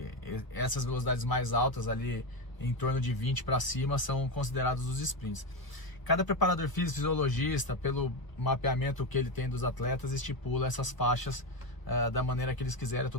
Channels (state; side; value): late; right; 1.0 ms